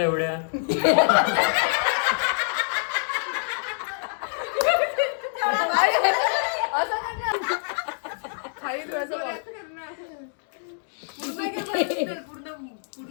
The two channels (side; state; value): right; silent; digital silence